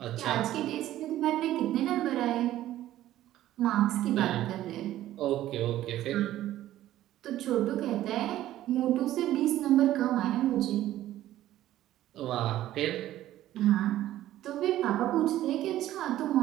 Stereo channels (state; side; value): quieter; left; 13.7 dB